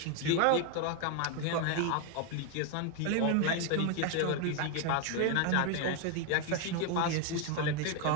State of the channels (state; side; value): different; both; correlation 0.01